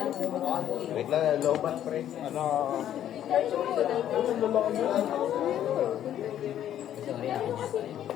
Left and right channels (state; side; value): quieter; right; 11.0 dB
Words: Wait lang, lobat pre. Ano? Sorry, ako.